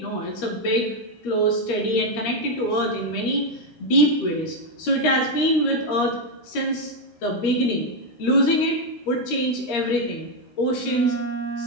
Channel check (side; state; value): right; late; 13 ms